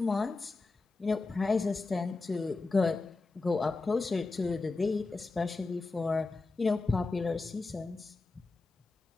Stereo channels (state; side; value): quieter; right; 3.6 dB